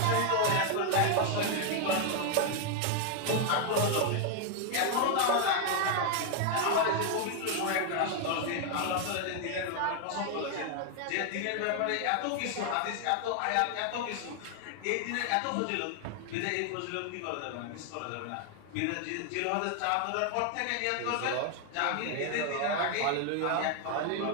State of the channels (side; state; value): both; different; correlation 0.00